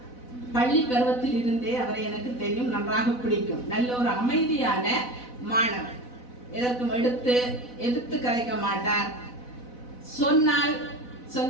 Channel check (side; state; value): right; late; 4.0 ms